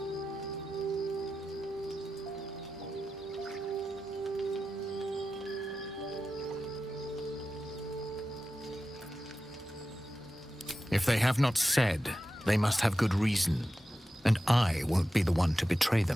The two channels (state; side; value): normal; both; correlation 0.93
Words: If they have not said, they must have good reason, and I won't be the one to betray